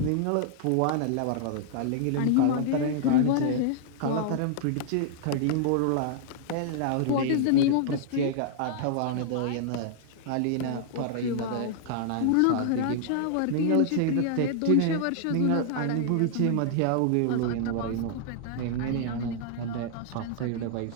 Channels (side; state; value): both; different; correlation -0.01